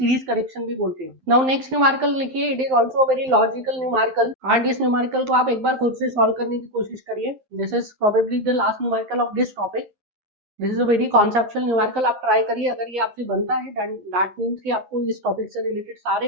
correction भी बोलते हैं। नाउ नेक्स्ट न्यूमेरिकल लिखिए। It is also very logical numerical and इस न्यूमेरिकल को आप एक बार खुद से सॉल्व करने की कोशिश करिए। This is probably the last numerical of this topic. This is a very conceptual numerical, आप ट्राई करिए। अगर ये आपसे बनता है दैट मीन्स कि आपको इस टॉपिक से रिलेटेड सारे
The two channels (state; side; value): late; left; 12 ms